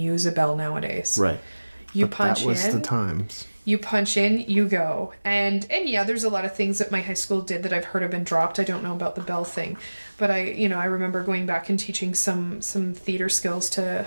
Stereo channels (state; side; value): inverted; both; correlation -1.00